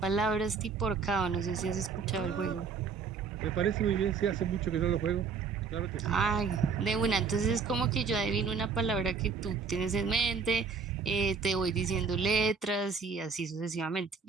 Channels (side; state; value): left; quieter; 5.4 dB